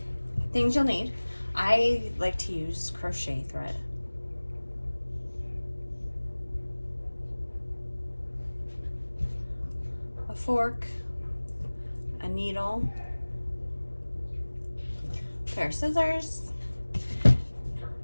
Things you'll need. I like to use crochet thread. A fork, a needle, a pair of scissors,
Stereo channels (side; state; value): both; inverted; correlation -1.00